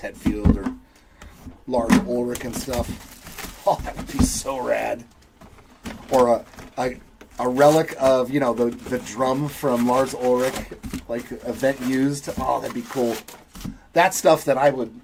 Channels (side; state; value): both; identical; correlation 1.00